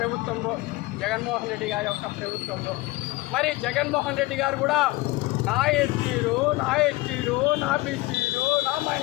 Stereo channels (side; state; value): right; quieter; 20.7 dB